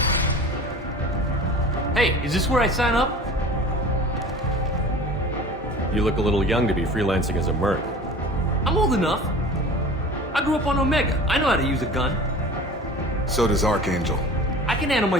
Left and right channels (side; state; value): both; normal; correlation 0.40